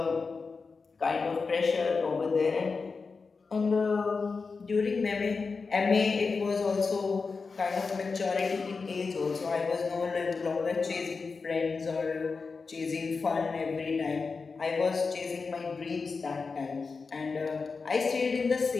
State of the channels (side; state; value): right; quieter; 4.6 dB